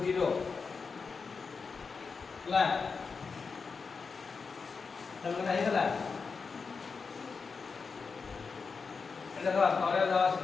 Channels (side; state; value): right; quieter; 5.0 dB